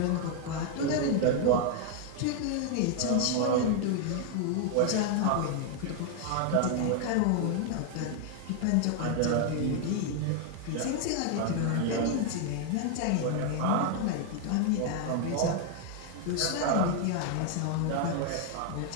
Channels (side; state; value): both; different; correlation 0.00